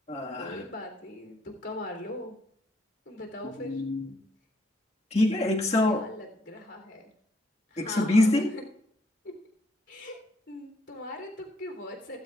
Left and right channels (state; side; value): normal; both; correlation 0.72